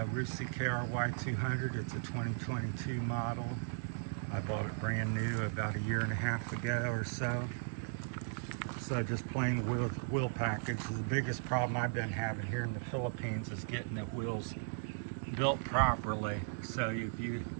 Rusi KRY 200. It's a 2022 model. I bought it brand new about 1.5 years ago or so. So just plain wheel package. The biggest problem I've been having here in the Philippines is getting the wheels built properly. So if you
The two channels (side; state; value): left; silent; digital silence